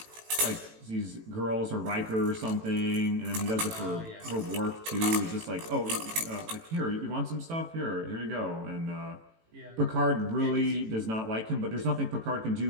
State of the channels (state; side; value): late; left; 18 ms